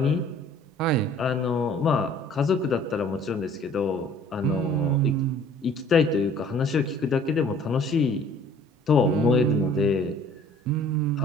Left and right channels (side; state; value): both; normal; correlation 0.53